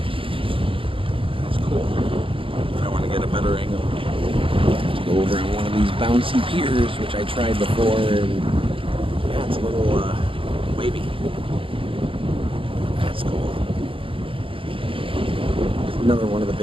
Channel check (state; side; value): late; left; 0.25 ms